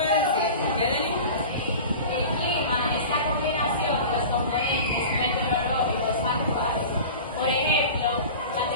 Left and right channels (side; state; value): both; inverted; correlation -0.35